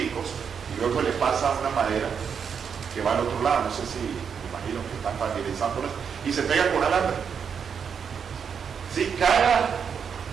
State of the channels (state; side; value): quieter; left; 6.9 dB